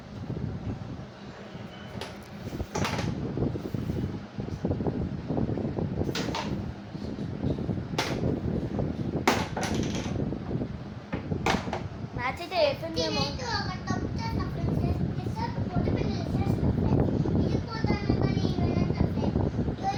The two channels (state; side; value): identical; both; correlation 1.00